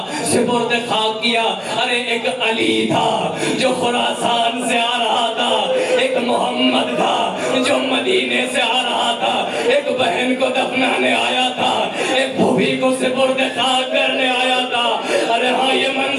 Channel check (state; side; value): identical; both; correlation 1.00